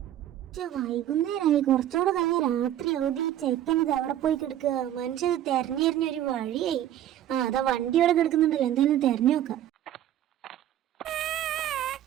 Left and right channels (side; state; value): left; quieter; 11.9 dB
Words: വൈകുന്നേരമായി കുറച്ചുകൂടെ കഴിഞ്ഞ രാത്രി അവധി ചെക്കനത് അവിടെ പോയി കിടക്കുക. മനുഷ്യത് തെരഞ്ഞെറിഞ്ഞൊരു വഴിയായി. അതാ വണ്ടി അവിടെ കിടക്കുന്നുണ്ടല്ലോ, എന്തായാലും തെരഞ്ഞു നോക്കാം.